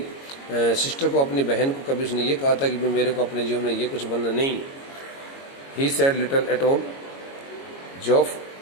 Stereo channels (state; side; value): late; right; 22 ms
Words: सिस्टर को, अपनी बहन को कभी उसने ये कहा था कि मेरे को अपने जीवन में ये कुछ बनना नहीं. He said little at all. Geoff